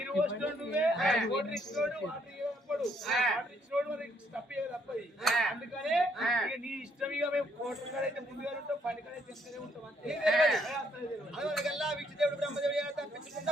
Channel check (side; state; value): both; normal; correlation 0.70